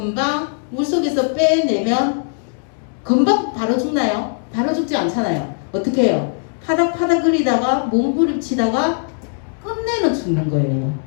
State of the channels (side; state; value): right; silent; 64 dB below the other